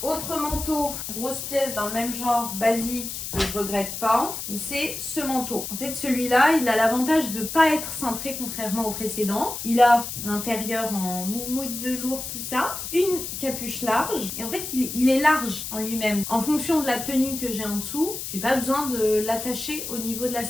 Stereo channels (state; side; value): noise; left; hiss, 6 dB below the sound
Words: Autre manteau, grosse pièce dans le même genre, basique, que je regrette pas, c'est ce manteau. En fait, celui-là, il a l'avantage de ne pas être cintré contrairement au précédent. Il a l'intérieur en moumoute velours, tout ça. Une capuche large. Et en fait, il est large en lui-même. En fonction de la tenue que j'ai en dessous, j'ai pas besoin de l'attacher au niveau de la